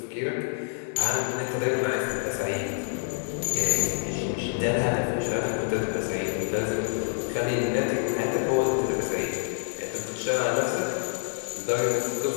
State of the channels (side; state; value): right; silent; 60 dB below the other